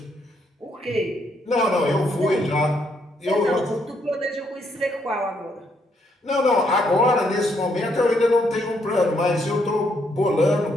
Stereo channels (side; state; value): both; normal; correlation 0.73